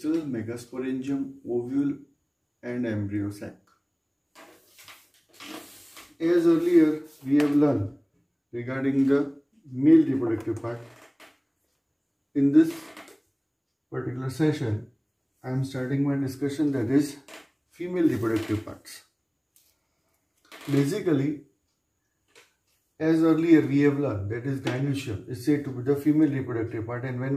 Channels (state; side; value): identical; both; correlation 1.00